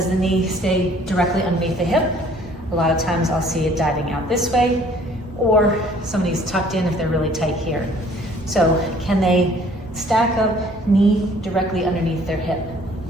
the knee stay directly underneath the hip? A lot of times I'll see it diving out this way, or somebody's tucked in if they're really tight here. So can they stack up knee directly underneath their hip?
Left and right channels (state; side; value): normal; both; correlation 0.56